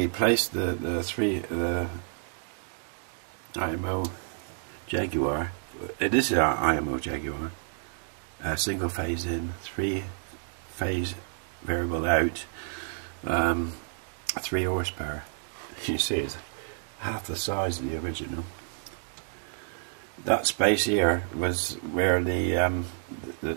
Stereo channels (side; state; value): left; silent; digital silence